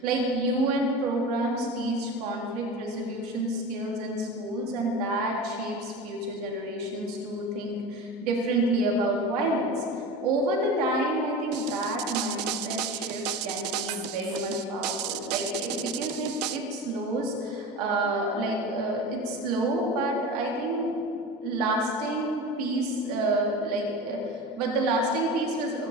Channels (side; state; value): both; normal; correlation 0.30